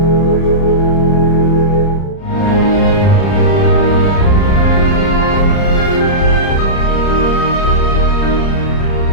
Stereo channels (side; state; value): right; late; 30 ms